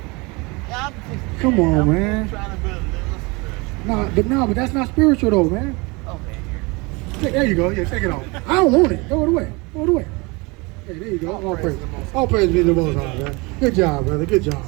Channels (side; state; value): left; quieter; 26.6 dB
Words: Yeah, Come on, man. I'm trying to build a little spiritual. But that's not spiritual though, man. Okay. There you go. Yeah, take it off. I don't want it. Throw it away. Throw it away. Hey, there you go. All praise. All praise be to the Most High, man. Good job, brother. Good